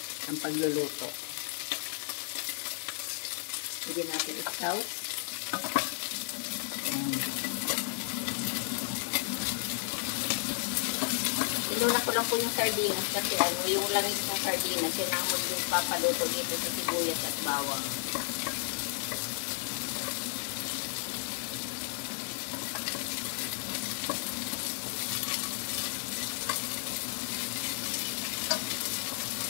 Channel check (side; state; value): right; silent; 56 dB below the other